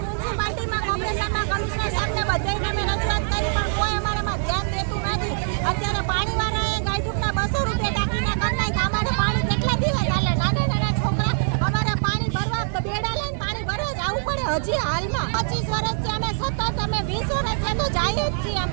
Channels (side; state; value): left; silent; 63 dB below the other